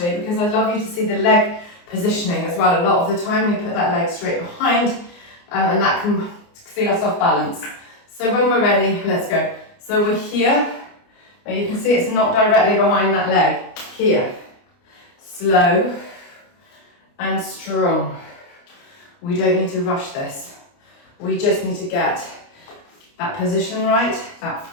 because I'd love you to see the leg positioning as well. A lot of the time we put that leg straight behind and that can see us off balance. So when we're ready, let's go. So we're here. Now you can see it's not directly behind that leg. Here. Slow and strong. We don't need to rush this. We just need to get that position right, that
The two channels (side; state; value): right; late; 29 ms